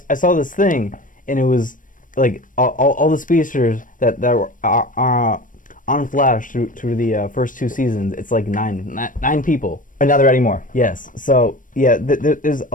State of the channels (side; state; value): right; late; 0.38 ms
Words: this thing, and it was like all the speedsters that were on Flash through the first 2 seasons. It's like nine people. And now they're adding more. Yes. So yeah, there's